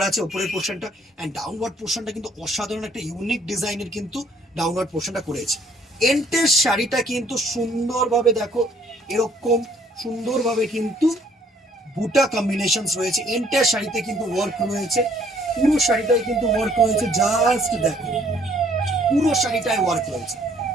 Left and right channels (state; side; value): normal; both; correlation 0.63